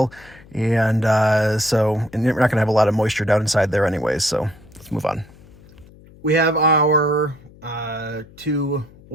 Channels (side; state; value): left; noise; hum, 23 dB below the sound